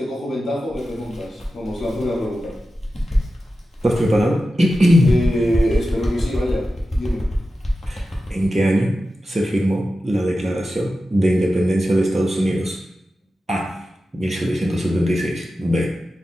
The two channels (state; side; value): normal; both; correlation 0.93